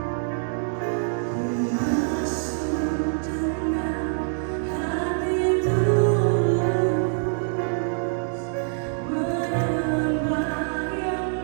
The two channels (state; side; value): silent; left; digital silence